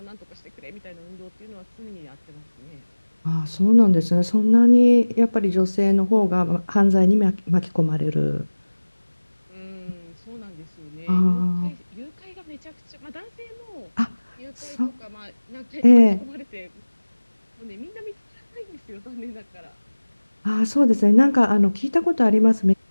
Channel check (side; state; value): both; inverted; correlation -1.00